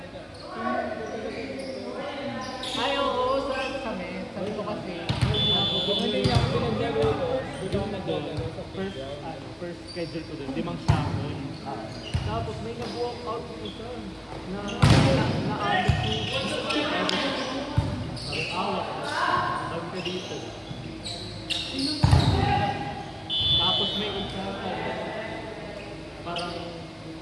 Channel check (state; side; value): identical; both; correlation 1.00